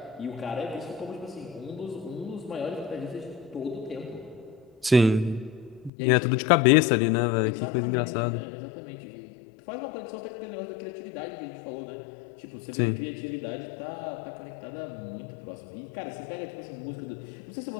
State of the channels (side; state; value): right; drops out; at 5.9 s